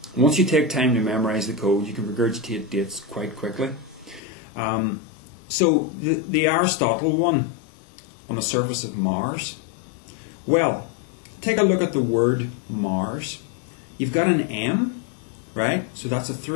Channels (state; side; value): drops out; right; at 4.2 s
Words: Once you take time to memorize the code, you can regurgitate dates quite quickly. So the Aristotle one on the surface of Mars. Well, take a look at the word Mars. You've got an M, right? So that's a